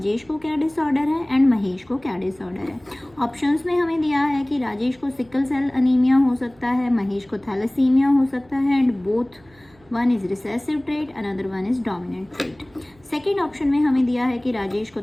को क्या डिसऑर्डर है एंड महेश को क्या डिसऑर्डर है. ऑप्शंस में हमें दिया है कि राजेश को सिकल सेल अनीमिया हो सकता है, महेश को थैलेसीमिया हो सकता है and both one is recessive trait, another one is dominant trait. Second option में हमें दिया है कि राजेश को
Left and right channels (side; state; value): right; noise; hum, 30 dB below the sound